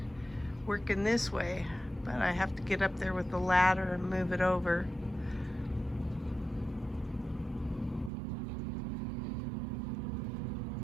working this way, but I have to get up there with the ladder and move it over.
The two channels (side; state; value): left; drops out; at 8.1 s